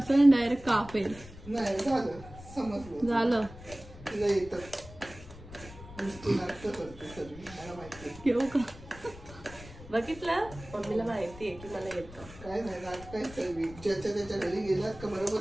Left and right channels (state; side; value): noise; left; rumble, 16 dB below the sound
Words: डायरेक्ट कापेल. नाही झालं समजलं. झालं तिला येतं. घेऊ का? बघितलं मम्मीला माहिती आहे की मला येतं. काय नाही नाटक काय सर्वी ज्याच्या त्याच्या घरी गेलात का बरोबर